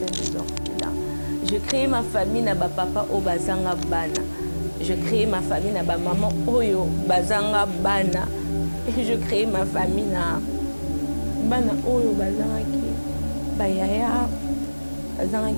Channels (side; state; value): both; inverted; correlation -1.00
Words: les orphelins. Je crée ma famille na ba papa o bazanga bana. Je crée ma famille na ba maman oyo bazanga bana. Et je crée ma famille na bana oyo bazanga ki ba yaya bazanga